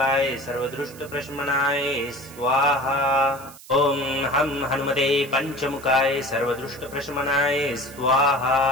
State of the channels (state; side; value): noise; right; hiss, 19 dB below the sound